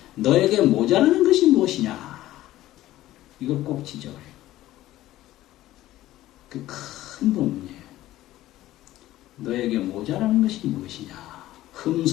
너에게 모자라는 것이 무엇이냐 이걸 꼭 지적을 해요. 그 큰 본문이에요. 너에게 모자라는 것이 무엇이냐.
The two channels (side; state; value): right; quieter; 15.1 dB